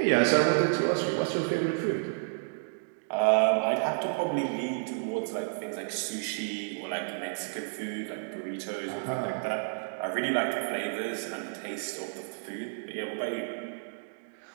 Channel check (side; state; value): left; silent; digital silence